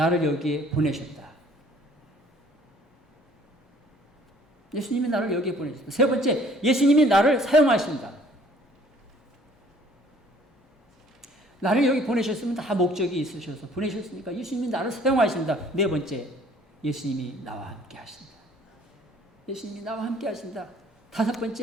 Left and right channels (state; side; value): normal; both; correlation 0.57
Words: 여기에 보내셨다. 예수님이 나를 여기에 보내셨다. 세 번째, 예수님이 나를 사용하신다. 나를 여기 보내셨으면 다 목적이 있으셔서 보내셨으니까 예수님이 나를 사용하신다. 네 번째, 예수님이 나와 함께 하신다. 예수님이 나와 함께 하신다. 다섯